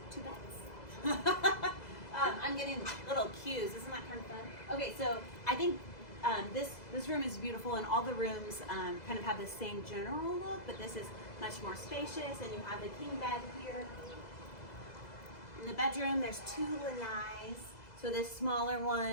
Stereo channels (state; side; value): late; right; 2.0 ms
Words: 2 beds. I'm getting little cues. Isn't that kind of fun? Okay, so I think this room is beautiful, and all the rooms kind of have the same general look, but this is much more spacious, and you have the king bed here. In the bedroom, there's 2 lanais, so this smaller